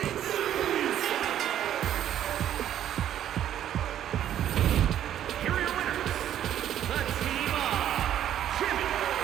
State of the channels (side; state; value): left; quieter; 10.9 dB